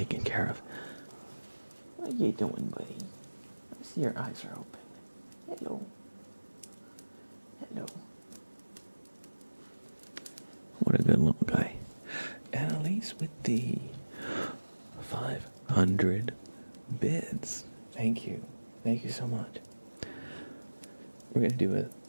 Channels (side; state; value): both; inverted; correlation -1.00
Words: care of. What are you doing, buddy? I see your eyes are open. Hello. Hello. What a good little guy. And at least with the 500 bids. Thank you. Thank you so much. We're going to do a